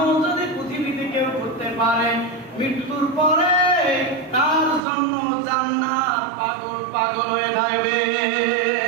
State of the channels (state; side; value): drops out; left; at 4.8 s